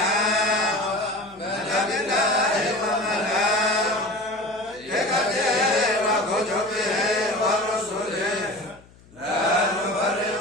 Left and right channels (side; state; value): left; noise; hum, 26 dB below the sound